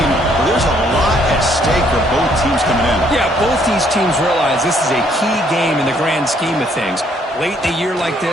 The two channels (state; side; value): normal; both; correlation 0.67